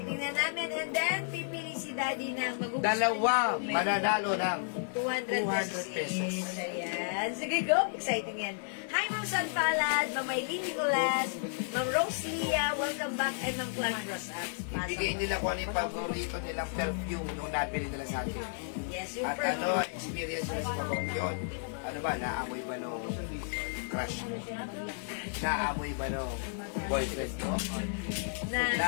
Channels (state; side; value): silent; right; digital silence